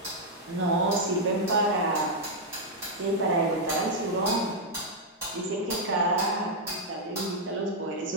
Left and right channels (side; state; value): both; normal; correlation -0.03